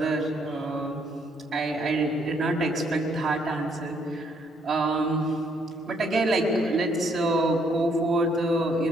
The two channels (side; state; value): both; normal; correlation 0.69